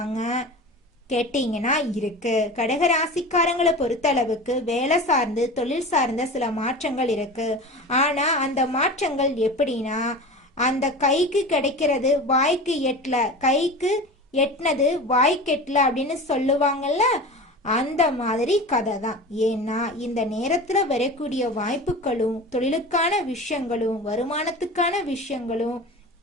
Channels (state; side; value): normal; both; correlation 0.33